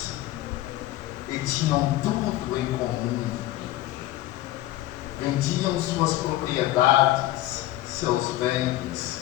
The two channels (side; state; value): right; quieter; 15.7 dB